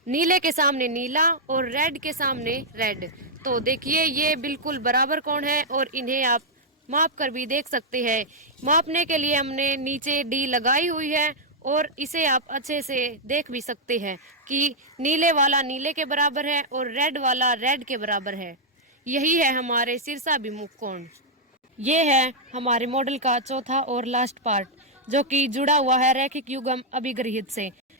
नीले के सामने नीला और रेड के सामने रेड। तो देखिए, ये बिल्कुल बराबर कोण है और इन्हें आप माप कर भी देख सकते हैं। मापने के लिए हमने नीचे डी लगाई हुई है और इसे आप अच्छे से देख भी सकते हैं कि नीले वाला नीले के बराबर है और रेड वाला रेड के बराबर है। यही है हमारे शीर्षाभिमुख कोण। ये है हमारे मॉडल का चौथा और लास्ट पार्ट, जो कि जुड़ा हुआ है रैखिक युग्म अभिगृहित से।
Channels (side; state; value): both; normal; correlation -0.05